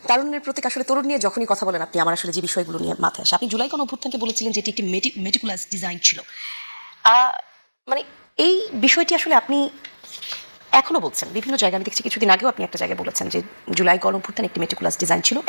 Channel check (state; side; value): inverted; both; correlation -1.00